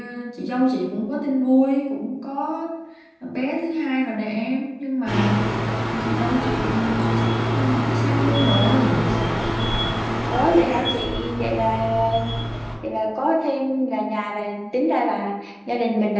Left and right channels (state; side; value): identical; both; correlation 1.00